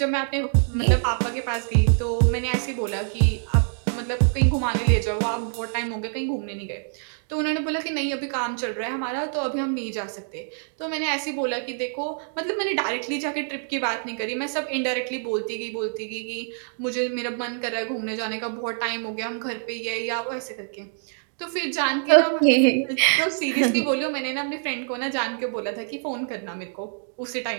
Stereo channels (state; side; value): silent; left; 61 dB below the other